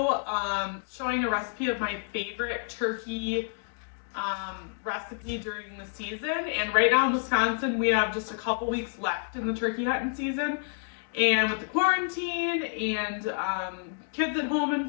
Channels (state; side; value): silent; right; digital silence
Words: showing a recipe of my favorite turkey recipe during the season. And right now in Wisconsin, we have just a couple weeks left in the turkey hunting season. And with the quarantine and kids at home and